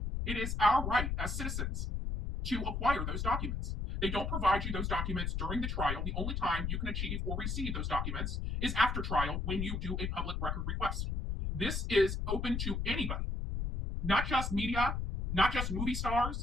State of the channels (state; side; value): noise; left; rumble, 2 dB below the sound